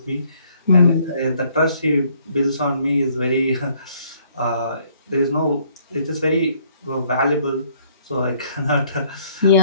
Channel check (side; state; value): both; inverted; correlation -0.65